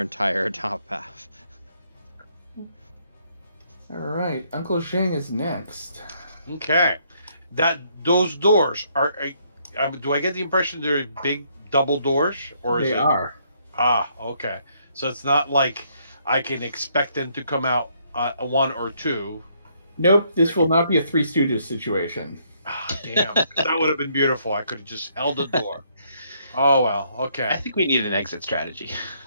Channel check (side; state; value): both; inverted; correlation -0.70